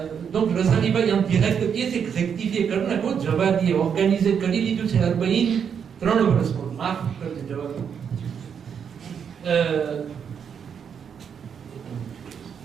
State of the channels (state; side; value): quieter; left; 7.4 dB